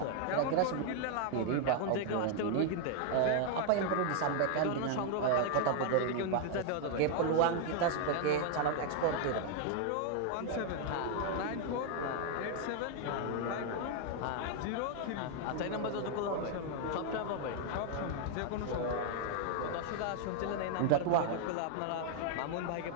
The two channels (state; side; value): different; both; correlation 0.00